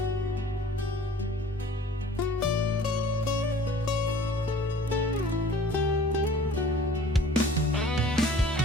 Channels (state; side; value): normal; both; correlation 0.49